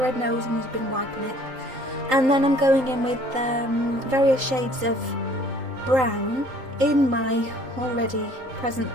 red nose and he's been wiping it. And then I'm going in with various shades of brown in my already present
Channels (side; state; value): left; late; 3.8 ms